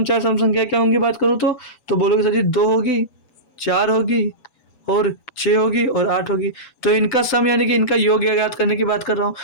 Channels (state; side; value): late; right; 7.1 ms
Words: चार सम संख्या क्या होंगी बात करूँ तो बोलोगे सर जी 2 होगी, 4 होगी और 6 होगी और 8 होगी। तो इनका सम यानी कि इनका योग ज्ञात करने की बात कर रहा हूँ।